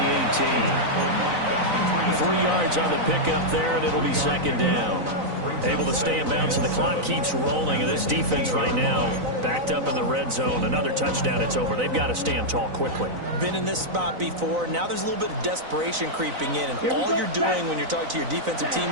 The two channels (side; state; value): left; late; 4.0 ms